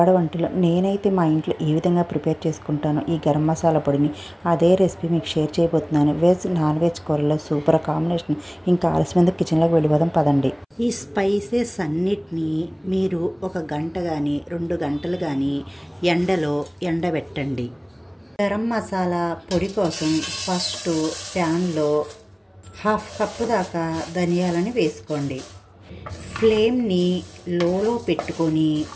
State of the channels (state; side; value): identical; both; correlation 1.00